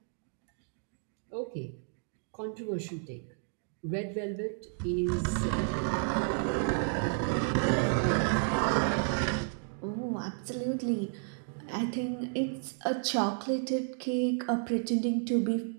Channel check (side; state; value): left; silent; 56 dB below the other